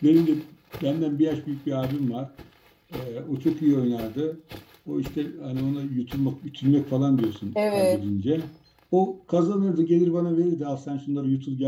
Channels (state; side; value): identical; both; correlation 1.00